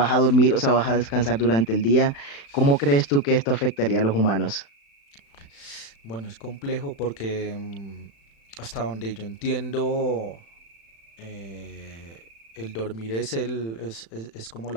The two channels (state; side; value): late; right; 36 ms